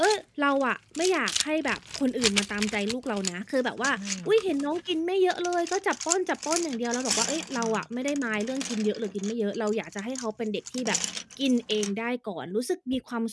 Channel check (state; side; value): identical; both; correlation 1.00